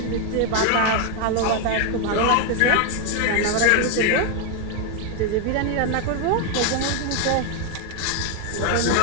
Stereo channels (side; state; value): both; different; correlation 0.01